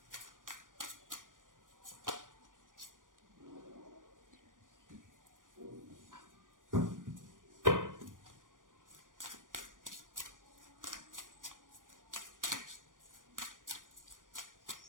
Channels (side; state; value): left; late; 0.88 ms